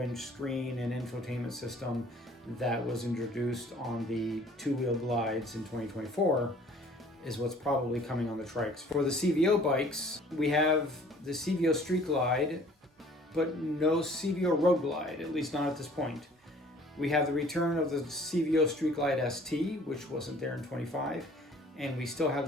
screen and infotainment system that was introduced on the two-wheel glides in 2024 is what's probably coming on the trikes. For the CVO bikes, we have the CVO Street Glide, but no CVO Road Glide, at least not at this point. We have the return of the CVO Street Glide ST, which wasn't there in 25, and we still have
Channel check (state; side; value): normal; both; correlation 0.53